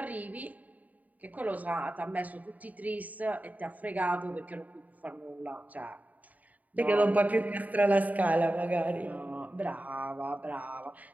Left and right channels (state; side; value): late; left; 0.075 ms